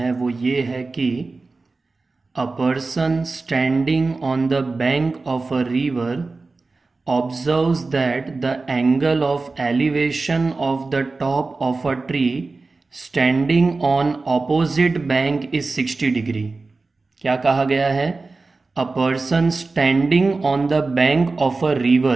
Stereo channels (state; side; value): quieter; left; 3.7 dB